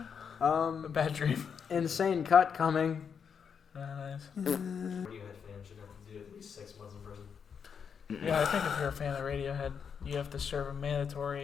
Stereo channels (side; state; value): right; quieter; 6.8 dB